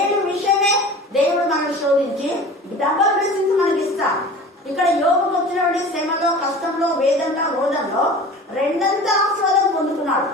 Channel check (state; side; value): normal; both; correlation 0.39